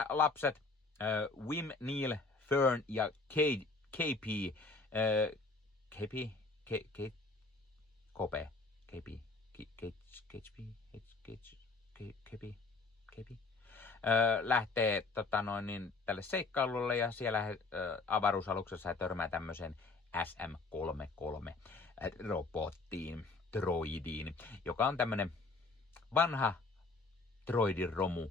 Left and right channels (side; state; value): right; quieter; 3.8 dB